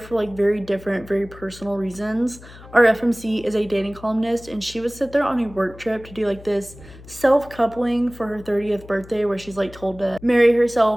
like very different, very personal reasons. Our FMC is a dating columnist, and she was sent there on a work trip to do like this self-coupling for her 30th birthday where she's like told to marry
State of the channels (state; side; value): noise; left; hum, 19 dB below the sound